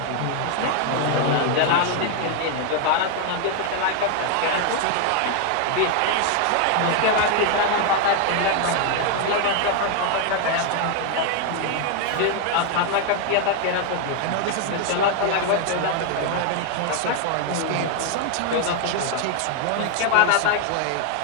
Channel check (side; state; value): both; different; correlation 0.01